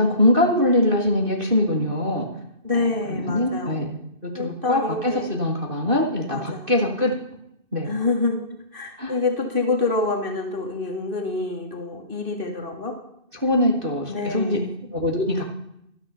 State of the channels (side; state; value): left; late; 2.6 ms